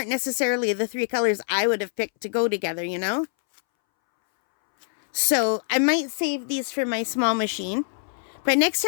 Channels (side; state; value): right; silent; 62 dB below the other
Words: necessarily the 3 colors I would have picked to go together, you know? So I might save these for my small machine. But next